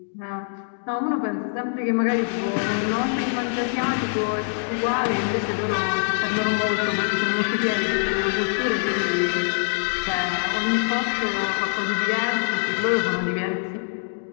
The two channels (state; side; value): silent; right; digital silence